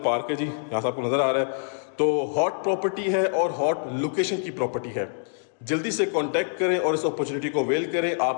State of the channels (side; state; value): right; silent; digital silence